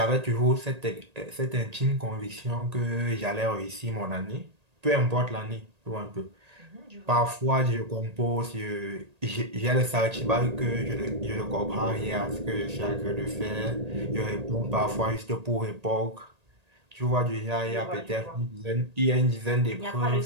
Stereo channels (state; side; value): late; left; 1.8 ms